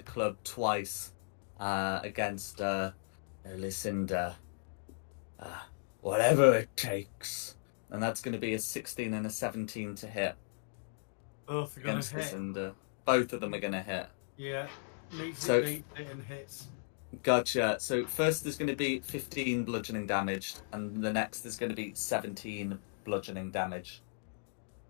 club twice against Lucinda. Whatever it takes. And that's going to be a 16 and a 17 to hit Both are going against to hit. Lucinda. Both of them are going to hit. Yeah. Meets So- it, beats it, and hits. Gotcha. So first there's going to be 15 bludgeoning damage, and the next is going to be 17 bludgeoning damage.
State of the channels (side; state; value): right; silent; digital silence